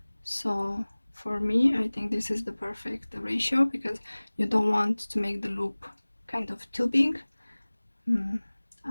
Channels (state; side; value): inverted; both; correlation -1.00